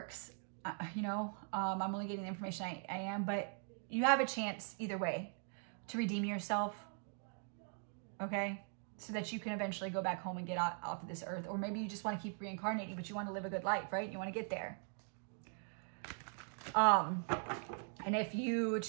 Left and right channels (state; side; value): silent; left; 50 dB below the other